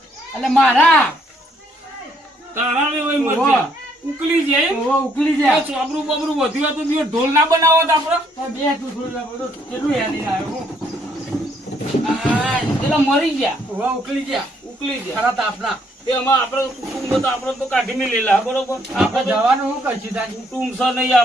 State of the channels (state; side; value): normal; both; correlation 0.69